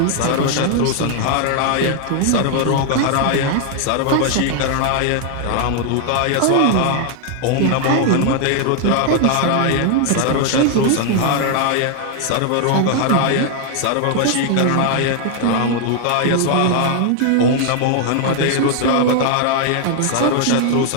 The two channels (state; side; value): different; both; correlation 0.00